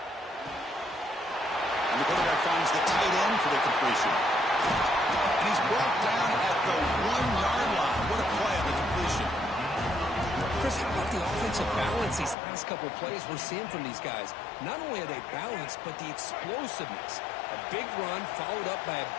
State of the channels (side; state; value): right; drops out; at 12.4 s